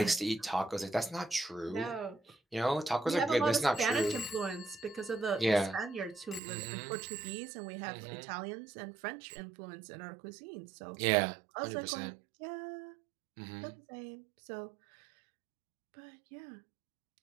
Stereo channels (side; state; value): left; drops out; at 6.4 s